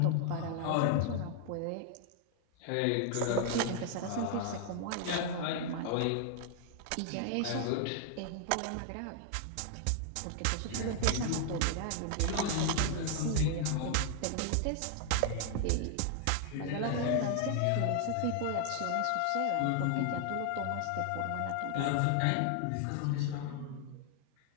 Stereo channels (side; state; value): both; different; correlation 0.00